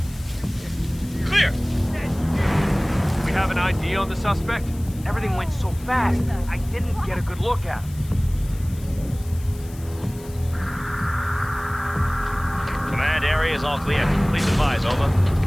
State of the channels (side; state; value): left; noise; hiss, 21 dB below the sound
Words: Clear! We have an ID on the suspect? Everything went so fast, I didn't get a good look at him. Command area is all clear. Please advise, over.